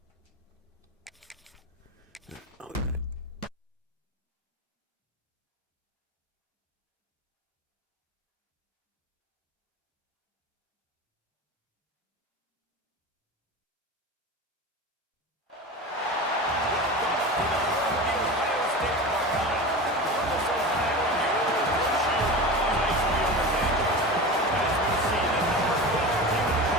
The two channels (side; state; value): both; normal; correlation 0.29